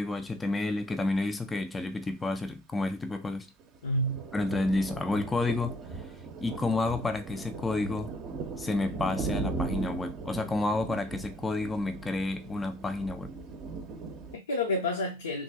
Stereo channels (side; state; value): both; normal; correlation 0.63